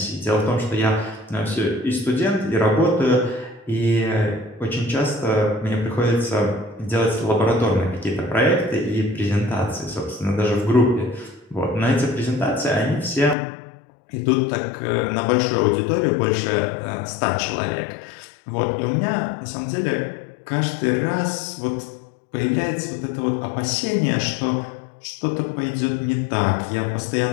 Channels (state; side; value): drops out; right; at 13.4 s